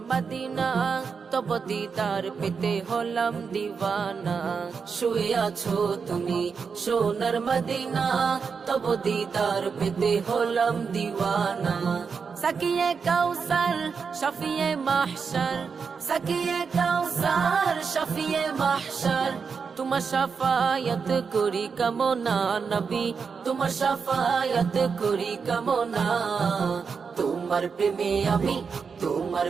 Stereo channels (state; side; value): quieter; left; 5.7 dB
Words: মদিনা তব দিদার পেতে হলাম দিওয়ানা শুয়ে আছো তুমি সোনার মদিনা তব দিদার পেতে হলাম দিওয়ানা সাকিয়ে কাউসার শফিয়ে মাহশর সাকিয়ে কাউসার শফিয়ে মাহশর তোমার শাফায়াত করি কামনা নবী তোমার শাফায়াত করি কামনা তোমার প্রেমে আমি তোমার